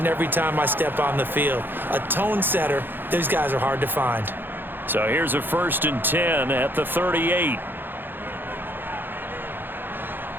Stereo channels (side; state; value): left; late; 0.097 ms